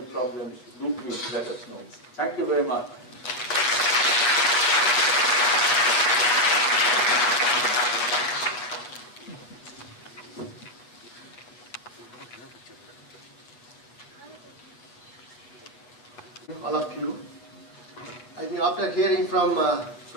do please let us know. Thank you very much. All of you. I think after hearing from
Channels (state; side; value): late; right; 8.1 ms